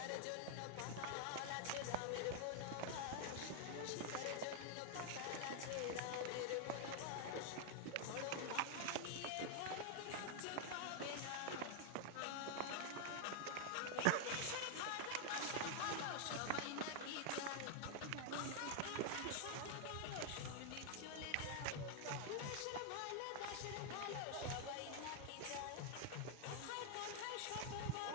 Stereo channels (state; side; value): different; both; correlation 0.00